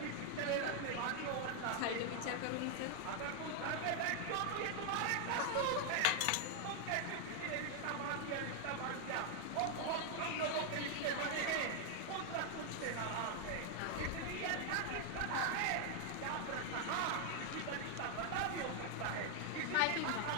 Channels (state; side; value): different; both; correlation 0.00